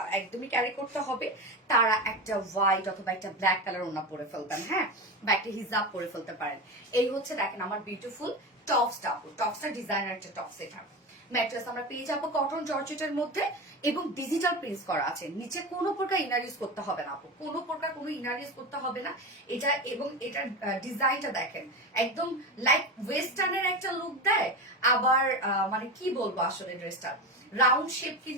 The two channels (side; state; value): both; normal; correlation 0.22